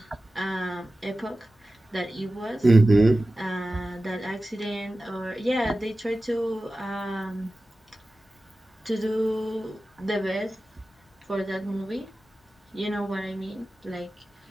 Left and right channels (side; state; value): both; normal; correlation 0.95